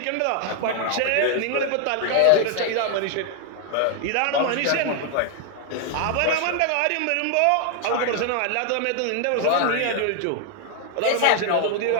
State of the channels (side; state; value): both; different; correlation 0.00